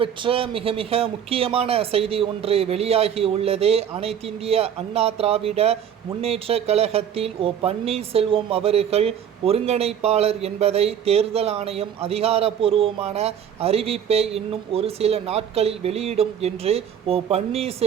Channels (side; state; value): left; quieter; 8.9 dB